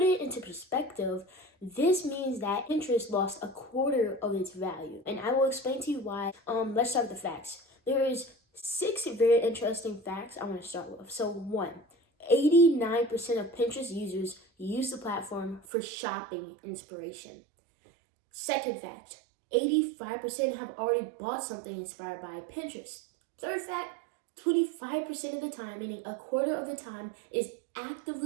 it into perspective, this means that Pinterest lost a quarter of its value. And I will explain to you why. Let's start with the facts. There is 6 very interesting facts I want to start with. So 1, 89% of Pinterest users use the platform for shopping inspiration. Second fact, 85% have already bought something inspired by Pinterest. Third fact, 25% of the time, meaning a quarter of the time, is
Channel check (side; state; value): left; drops out; at 15.6 s